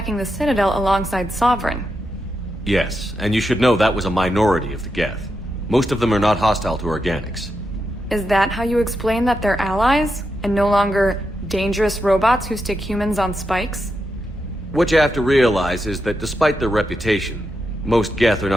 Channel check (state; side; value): normal; both; correlation 0.86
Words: the Citadel alongside Sovereign. Yes, and you should know that was a minority of the Geth. Most of them are not hostile to organics. Is that how you explain that they're allies, and no longer dangerous robots who stick humans on spikes? What you have to realize is that despite their reputation, most Geth are